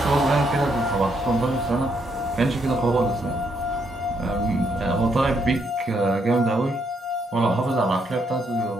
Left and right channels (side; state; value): both; normal; correlation 0.75